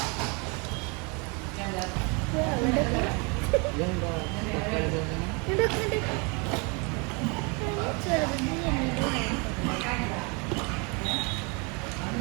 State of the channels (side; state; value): left; quieter; 31.4 dB